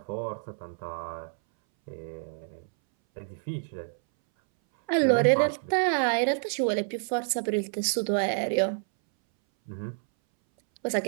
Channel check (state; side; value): silent; left; 59 dB below the other